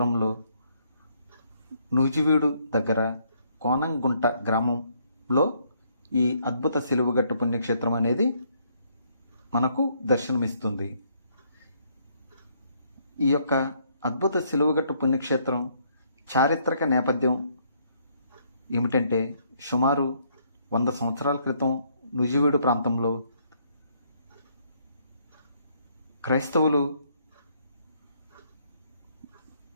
నూజివీడు దగ్గర కోనంగుంట గ్రామంలో ఈ అద్భుత సిలువగట్టు పుణ్యక్షేత్రం అనేది మనకు దర్శనమిస్తుంది. ఈ యొక్క అద్భుత సిలువగట్టు పుణ్యక్షేత్రం చారిత్రక నేపథ్యం ఏమిటంటే, సుమారు 100 సంవత్సరాల క్రితం నూజివీడు ప్రాంతంలో క్రైస్తవులు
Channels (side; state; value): both; inverted; correlation -0.69